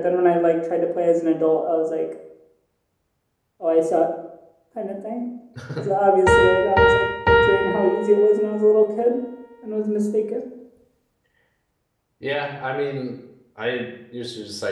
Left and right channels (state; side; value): identical; both; correlation 1.00